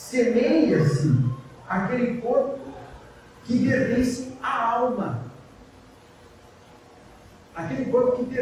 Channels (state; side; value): identical; both; correlation 1.00